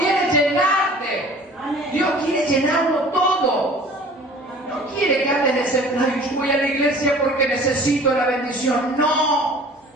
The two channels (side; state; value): both; normal; correlation 0.47